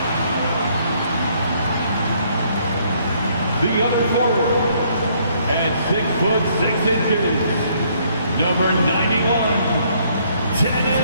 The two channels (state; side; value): inverted; both; correlation -0.66